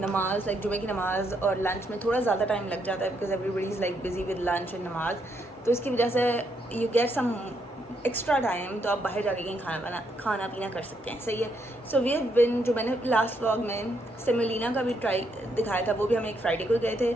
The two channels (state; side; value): normal; both; correlation 0.76